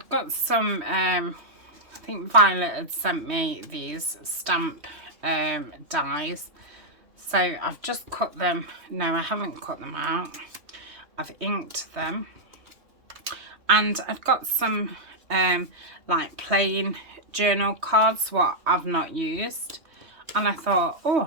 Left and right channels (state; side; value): late; left; 3.2 ms